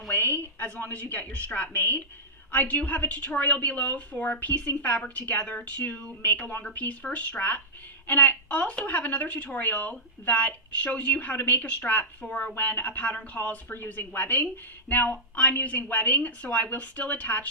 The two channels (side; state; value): both; normal; correlation -0.12